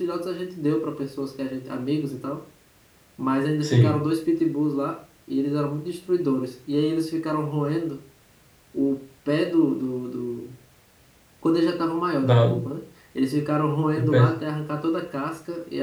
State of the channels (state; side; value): identical; both; correlation 1.00